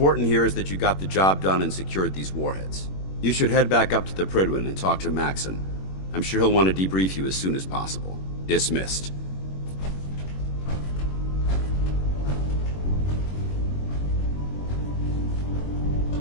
here is that you got the job done and secured these warheads. You should head back up to the Prydwen and talk to Maxon. I'm sure he'll want to debrief you as soon as possible. Dismissed.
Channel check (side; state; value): right; late; 21 ms